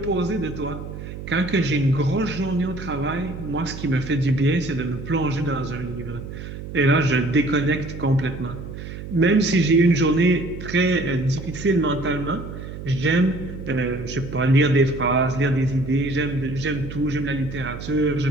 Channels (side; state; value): right; noise; hum, 10 dB below the sound